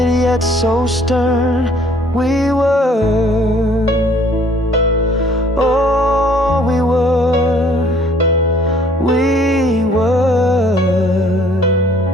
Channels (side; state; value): both; normal; correlation 0.58